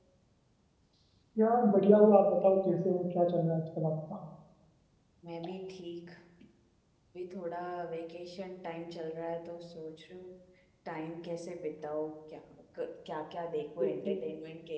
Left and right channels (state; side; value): identical; both; correlation 1.00